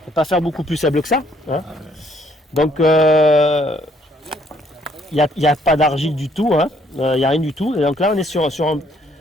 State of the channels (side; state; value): both; normal; correlation 0.66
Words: peut pas faire beaucoup plus sable que ça. Hein. Donc, il n'y a pas d'argile du tout, hein. Il n'y a rien du tout. Et donc là, on est sur un